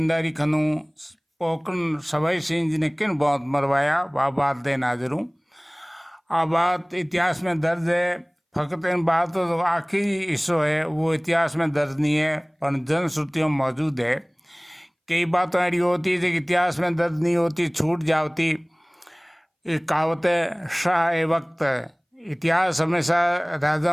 खनू पोकन सवाई सिंह जी ने किन बहुत मरवाया, वह बात देने हाजिर हूँ। आ बात इतिहास में दर्ज है, फकत इन बात तो आखिरी हिस्सो है वो इतिहास में दर्ज नहीं है पर जनश्रुतियों में मौजूद है। कई बातें ऐसी होती है जो इतिहास में दर्ज नहीं होती, छूट जाती। एक कहावत है शाह ए वक्त, इतिहास हमेशा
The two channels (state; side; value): identical; both; correlation 1.00